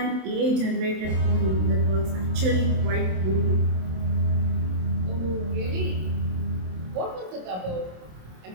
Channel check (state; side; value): late; left; 27 ms